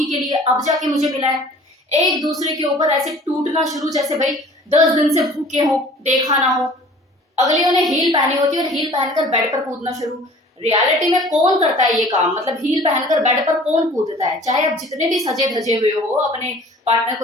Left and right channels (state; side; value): normal; both; correlation 0.48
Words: के लिए, अब जाके मुझे मिला है। एक दूसरे के ऊपर ऐसे टूटना शुरू जैसे भाई 10 दिन से भूखे हो, देखा ना हो। अगलियों ने हील पहनी होती है और हील पहनकर बेड पर कूदना शुरू। रियलिटी में कौन करता है ये काम? मतलब हील पहनकर बेड पर कौन कूदता है? चाहे आप जितने भी सजे धजे हुए हो अपने पार्टनर